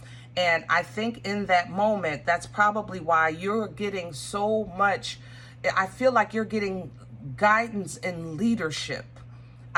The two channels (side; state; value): both; identical; correlation 1.00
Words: And I think in that moment, that's probably why you're getting so much. I feel like you're getting guidance and leadership.